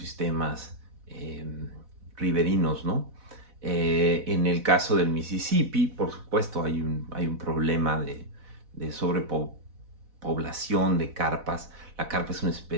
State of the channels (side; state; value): left; late; 4.1 ms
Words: riberinos, ¿no? En el caso del Mississippi, por supuesto, hay un problema de sobrepoblación de carpas. La carpa es una